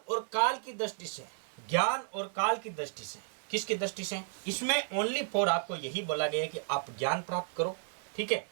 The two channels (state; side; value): silent; left; 56 dB below the other